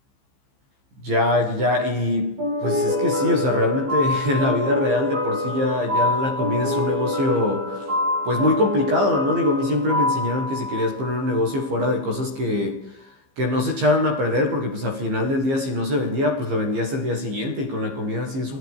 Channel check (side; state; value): left; late; 15 ms